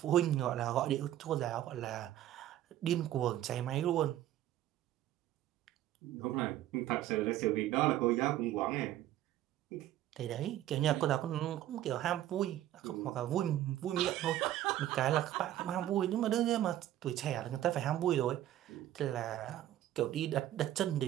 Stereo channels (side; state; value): left; quieter; 13.1 dB